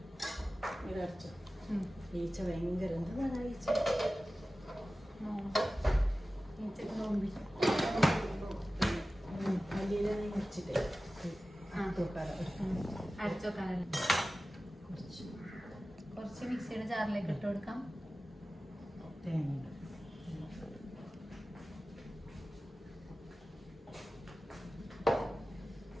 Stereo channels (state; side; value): normal; both; correlation 0.96